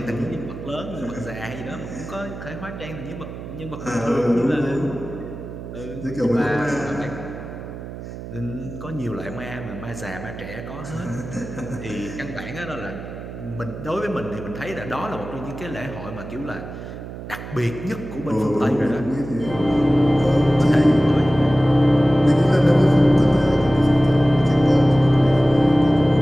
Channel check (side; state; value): right; noise; hum, 11 dB below the sound